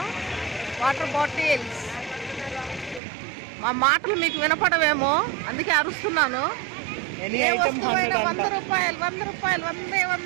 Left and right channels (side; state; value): left; drops out; at 3.0 s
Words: Water bottles. మా మాటలు మీకు వినపడవేమో, అందుకే అరుస్తున్నాను. ఏ వస్తువైనా 100 రూపాయలు 100 రూపాయలు